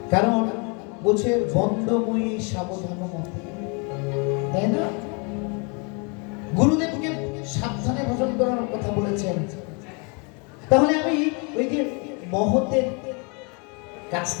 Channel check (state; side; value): quieter; right; 33.8 dB